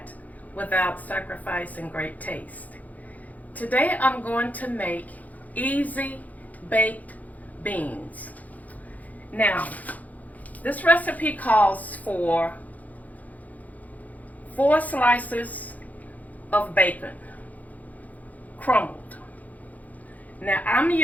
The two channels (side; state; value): right; late; 0.078 ms